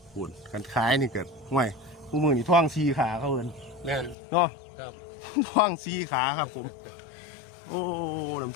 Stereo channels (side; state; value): right; drops out; at 4.2 s